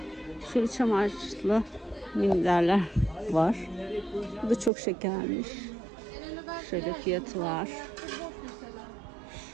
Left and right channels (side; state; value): left; drops out; at 4.7 s